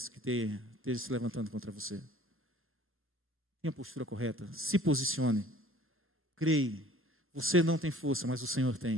que esteja se levantando contra você. Tenha a postura correta. Se posicione. Creia. Você não tem força, mas o Senhor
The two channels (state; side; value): normal; both; correlation 0.50